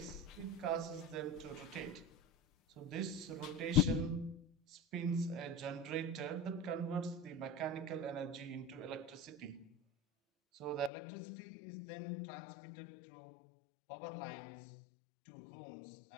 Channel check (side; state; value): right; drops out; at 10.9 s